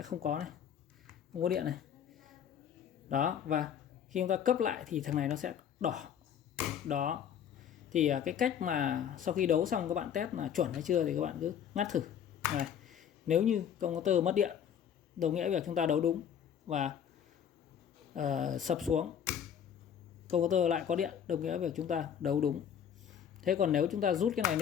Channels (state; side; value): quieter; right; 8.6 dB